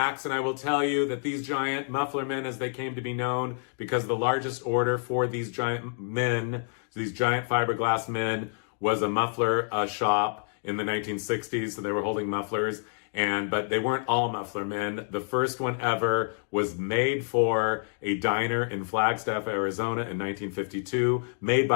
And I will tell you that these giant muffler men, as they came to be known, because the largest order for these giant men, these giant fiberglass men, was a muffler shop in the 1960s. So they were holding mufflers. But they weren't all muffler men. The first one ever was made for a diner in Flagstaff, Arizona in 1952, made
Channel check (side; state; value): right; silent; digital silence